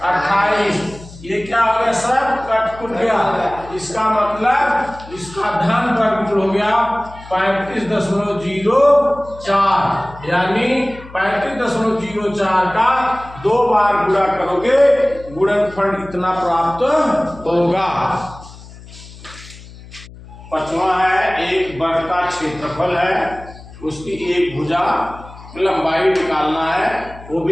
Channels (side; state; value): left; noise; hum, 18 dB below the sound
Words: 28। ये क्या हो गया सब कट गया। इसका मतलब इसका धन वर्गमूल हो गया 35.04 यानी 35.04 का 2 बार गुणा करोगे गुणनफल इतना प्राप्त होगा। 5वां है एक वर्ग का क्षेत्रफल है उसकी एक भुजा लंबाई निकालना है वो